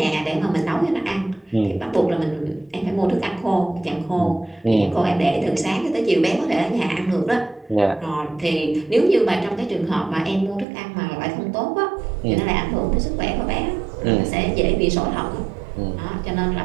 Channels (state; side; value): drops out; left; at 10.7 s